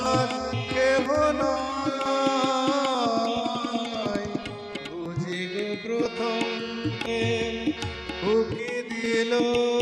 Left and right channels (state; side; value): identical; both; correlation 1.00